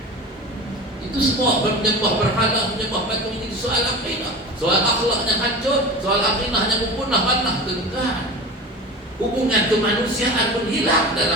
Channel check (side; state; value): both; normal; correlation 0.33